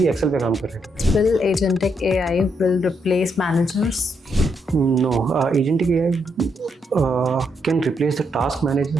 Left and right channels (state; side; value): normal; both; correlation 0.78